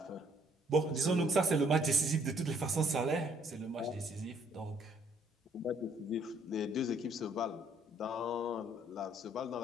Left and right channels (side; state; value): both; normal; correlation 0.64